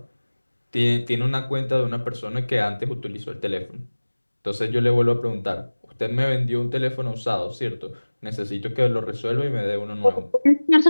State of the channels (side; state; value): both; inverted; correlation -1.00